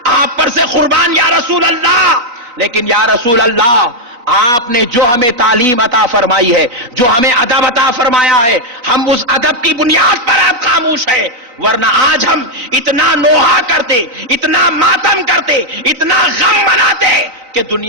آپ پر سے قربان یا رسول اللہ. لیکن یا رسول اللہ آپ نے جو ہمیں تعلیم عطا فرمائی ہے، جو ہمیں ادب عطا فرمایا ہے، ہم اس ادب کی بنیاد پر آپ خاموش ہے، ورنہ آج ہم اتنا نوحہ کرتے، اتنا ماتم کرتے، اتنا غم مناتے کہ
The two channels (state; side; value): late; left; 4.0 ms